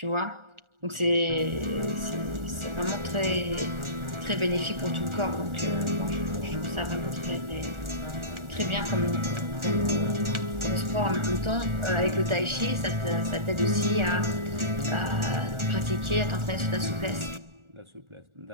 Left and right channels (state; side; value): late; left; 1.4 ms